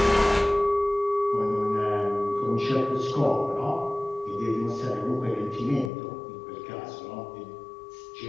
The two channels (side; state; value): right; drops out; at 5.9 s